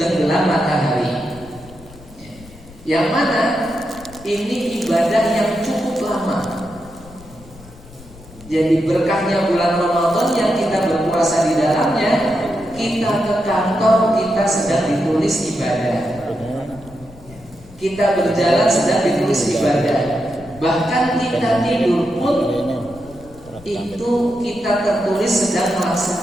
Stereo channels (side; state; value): left; noise; rumble, 21 dB below the sound